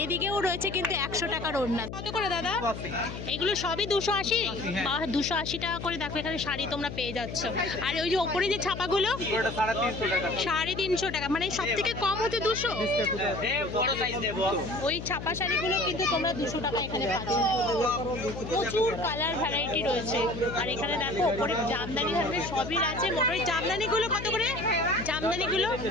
এদিকেও রয়েছে কিন্তু 100 টাকার ওড়না। কত করে দাদা? এগুলো সবই 280। 280 টাকা করে। দেখো এখানে শাড়ি তোমরা পেয়ে যাচ্ছ। আর ওই যে ওপরে যে ছাপাগুলো 350 টাকা। মানে সব থেকে কম হচ্ছে 200। ওই ছাপা শাড়িগুলো কিন্তু তোমরা 200 টাকা এখানে পাচ্ছ। প্রচুর কালার ভ্যারাইটি রয়েছে। আর এখানে দেখো ওপরে জামদানি ধরনের সবই আছে। মোটর জামদানিগুলো কত করে? জামদানিগুলো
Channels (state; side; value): noise; left; hum, 8 dB below the sound